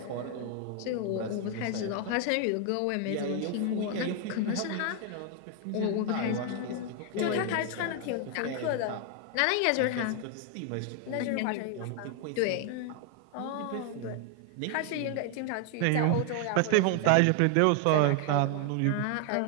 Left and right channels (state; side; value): different; both; correlation 0.00